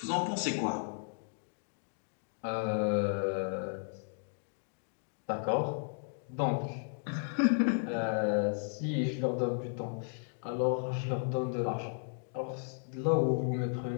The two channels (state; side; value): silent; right; digital silence